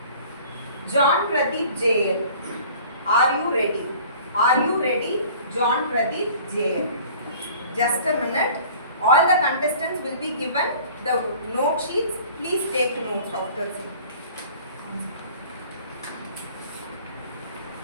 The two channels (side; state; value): both; inverted; correlation -0.48